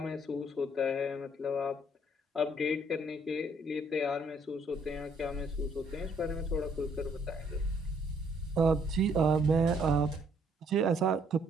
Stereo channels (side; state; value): both; normal; correlation 0.66